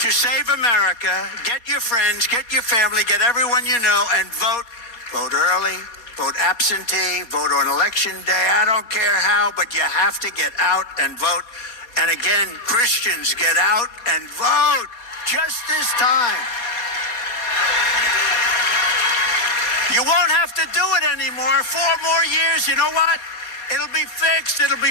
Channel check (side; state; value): right; late; 4.2 ms